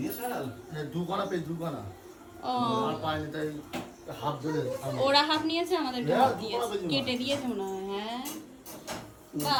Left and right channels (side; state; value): both; identical; correlation 1.00